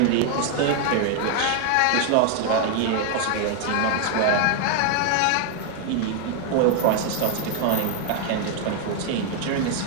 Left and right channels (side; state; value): both; different; correlation 0.00